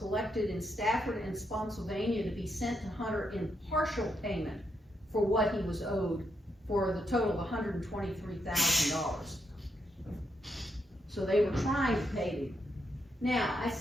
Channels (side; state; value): both; normal; correlation 0.79